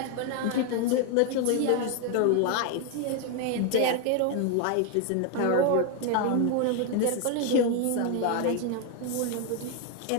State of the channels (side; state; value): both; different; correlation 0.01